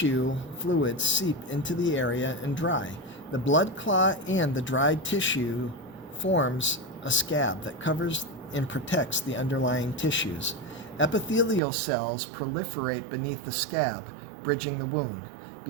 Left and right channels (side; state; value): left; drops out; at 11.6 s